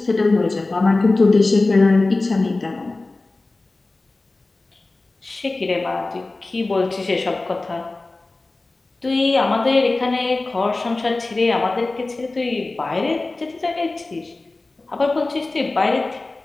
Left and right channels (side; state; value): right; quieter; 3.2 dB